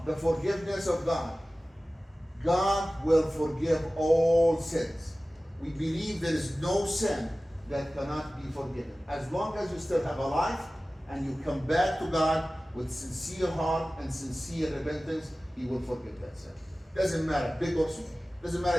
the forgiveness of God. God will forgive all sins. We believe there is no sin that cannot be forgiven. As long as you still have a life and you come back to God with sincere heart and sincere repentance, He will forgive that sin. Doesn't matter, big or small. Doesn't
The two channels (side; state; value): both; normal; correlation 0.97